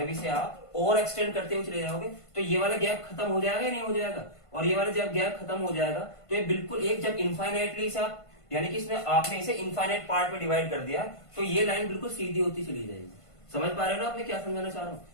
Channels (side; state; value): right; late; 1.5 ms